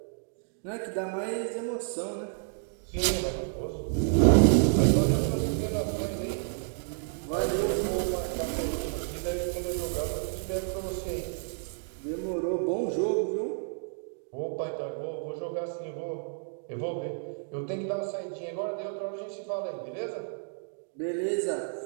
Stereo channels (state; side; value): silent; left; digital silence